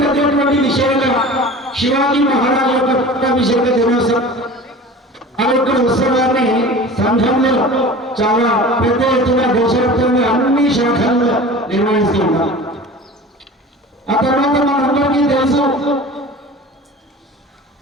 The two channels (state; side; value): normal; both; correlation 0.38